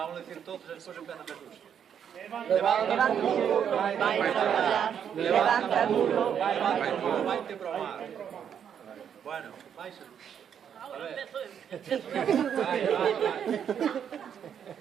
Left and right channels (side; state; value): left; quieter; 8.4 dB